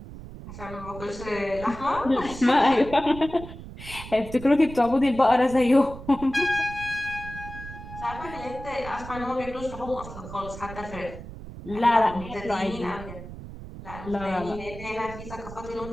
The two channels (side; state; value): right; noise; rumble, 13 dB below the sound